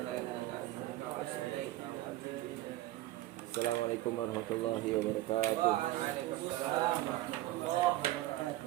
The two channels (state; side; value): quieter; left; 16.2 dB